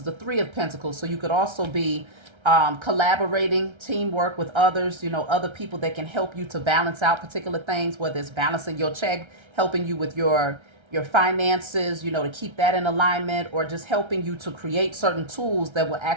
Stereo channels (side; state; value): left; late; 1.3 ms